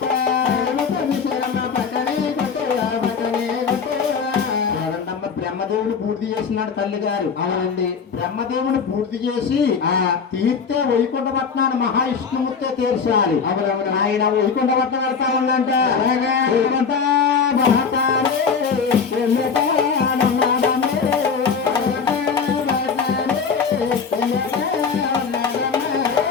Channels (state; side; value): quieter; right; 5.8 dB